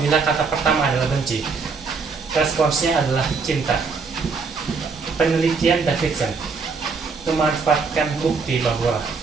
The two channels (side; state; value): left; quieter; 4.8 dB